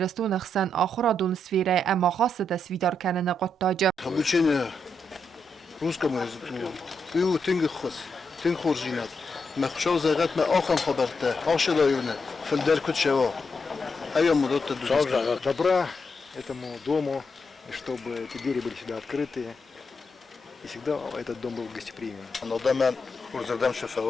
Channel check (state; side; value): normal; both; correlation 0.82